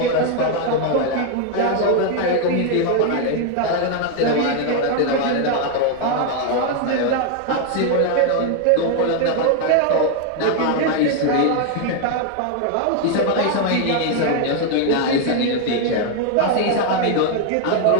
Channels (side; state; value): both; different; correlation 0.00